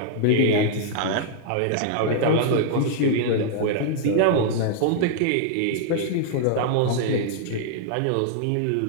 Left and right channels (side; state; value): both; different; correlation -0.01